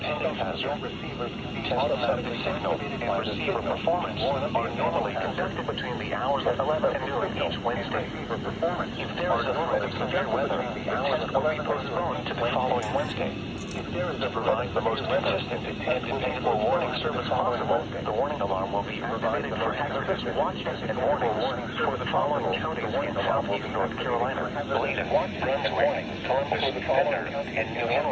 hazard. Tests of the signal and receiver performance are normally conducted between the hours of 11 and noon each Wednesday. If there is a threat of severe weather, the test will be postponed to the following Wednesday. To provide the most consistent and dependable warning service possible, the warning alarm will be activated for hazardous watches and warnings for the following counties in southeast North Carolina: Bladen, Brunswick, Columbus, Penner, and New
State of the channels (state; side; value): identical; both; correlation 1.00